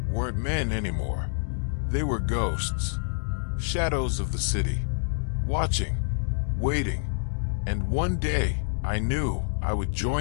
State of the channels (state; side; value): silent; right; digital silence